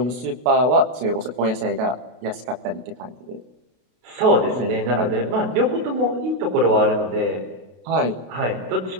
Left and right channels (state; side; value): late; left; 32 ms